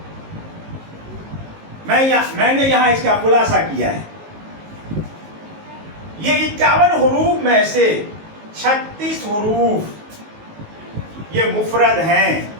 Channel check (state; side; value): late; left; 19 ms